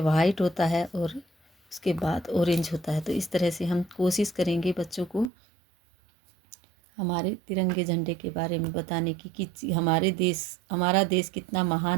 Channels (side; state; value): left; drops out; at 5.3 s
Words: होता है और उसके बाद ऑरेंज होता है। तो इस तरह से हम कोशिश करेंगे बच्चों को हमारे तिरंगे झंडे के बारे में बताने की कि हमारा देश कितना